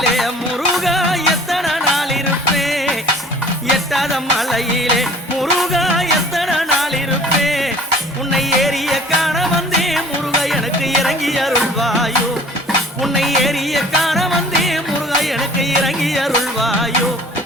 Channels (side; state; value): both; normal; correlation 0.50